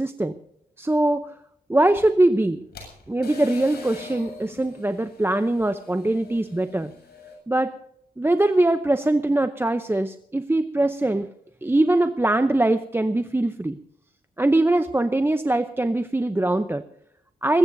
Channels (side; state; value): both; normal; correlation 0.93